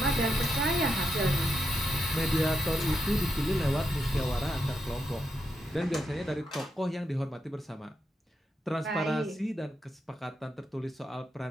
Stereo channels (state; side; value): normal; both; correlation 0.83